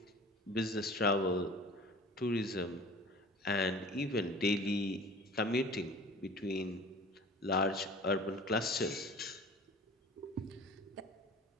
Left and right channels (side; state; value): both; normal; correlation 0.41